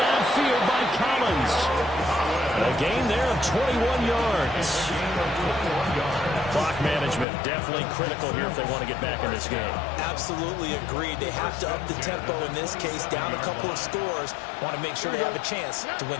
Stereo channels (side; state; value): right; drops out; at 7.2 s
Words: by Collins. A gain there of 21 yards. Clock management definitely critical here if they want to get back in this game. Absolutely agreed. They have to up the tempo in this case, down a couple of scores. Want to make sure they have a chance to win